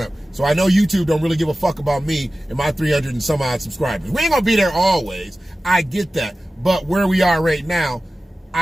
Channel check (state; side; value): normal; both; correlation 0.95